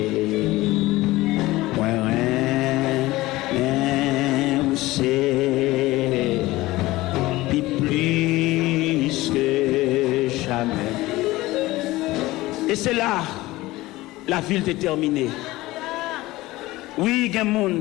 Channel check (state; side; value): quieter; right; 18.7 dB